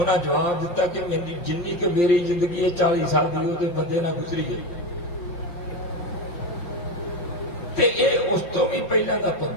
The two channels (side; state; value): right; late; 5.7 ms